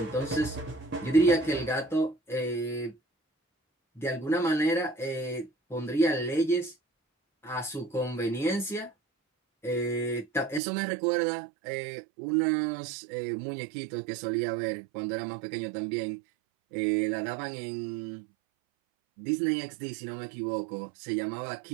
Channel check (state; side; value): drops out; left; at 10.6 s